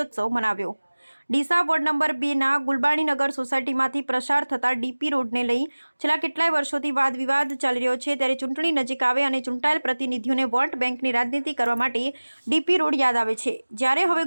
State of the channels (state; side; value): inverted; both; correlation -1.00